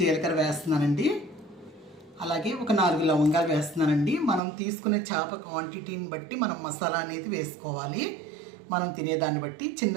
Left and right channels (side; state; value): left; drops out; at 4.4 s